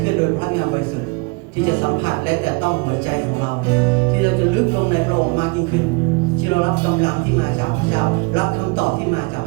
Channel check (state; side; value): quieter; left; 29.2 dB